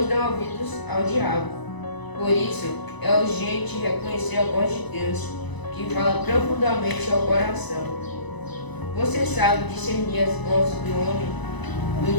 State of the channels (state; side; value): late; right; 1.0 ms